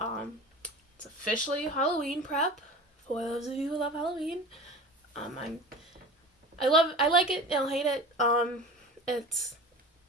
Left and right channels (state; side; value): normal; both; correlation 0.35